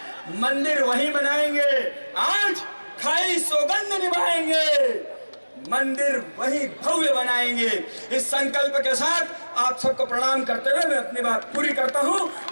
मंदिर वहीं बनाएंगे, आज खाई सौगंध निभाएंगे, मंदिर वहीं भव्य बनाएंगे। इस संकल्प के साथ आप सबको प्रणाम करते हुए मैं अपनी बात पूरी करता हूं।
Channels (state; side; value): inverted; both; correlation -1.00